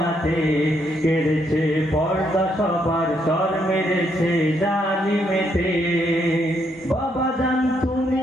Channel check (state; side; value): normal; both; correlation 0.74